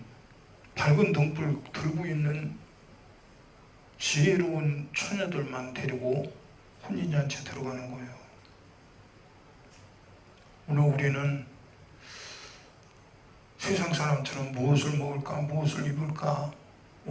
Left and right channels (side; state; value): both; identical; correlation 1.00